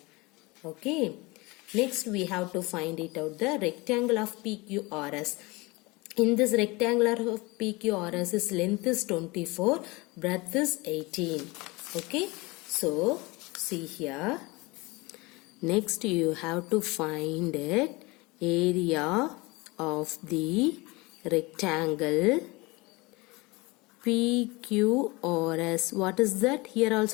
Okay. Next we have to find it out, the rectangle of PQRS. In this rectangular of PQRS, its length is 24, breadth is 18. Okay. So, see here. Next you have to find it, area of the rectangle PQRS. What is that? Here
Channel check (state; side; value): quieter; right; 24.1 dB